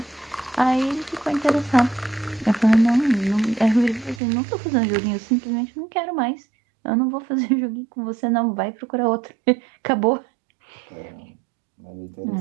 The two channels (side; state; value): left; drops out; at 4.2 s